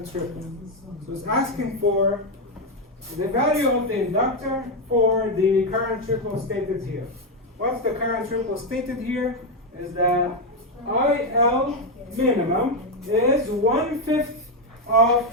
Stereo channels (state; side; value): normal; both; correlation 0.05